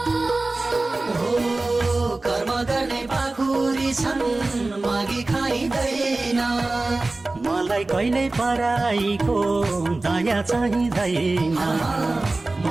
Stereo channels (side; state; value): left; quieter; 3.1 dB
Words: कर्म गर्ने पाखुरी छन् मागी खाइँदैन। मलाई कहिल्यै पराईको दया चाहिँदैन।